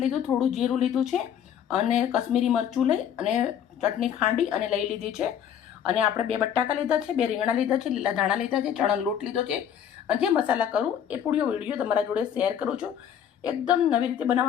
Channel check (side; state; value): right; quieter; 9.1 dB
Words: લીધું, થોડું જીરું લીધું છે અને કશ્મીરી મરચું લઈ અને ચટણી ખાંડી અને લઈ લીધી છે. અને આપણે 2 બટાકા લીધા છે, 2 રીંગણા લીધા છે, લીલા ધાણા લીધા છે, ચણાનો લોટ લીધો છે. અને જે મસાલા કરું એ પૂરો વિડીયો તમારા જોડે શેર કરું છું. એકદમ નવી રીતે